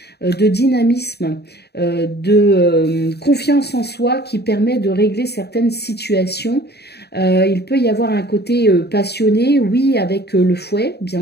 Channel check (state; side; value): late; right; 0.48 ms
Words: de dynamisme, de confiance en soi qui permet de régler certaines situations. Il peut y avoir un côté passionné, oui, avec le fouet,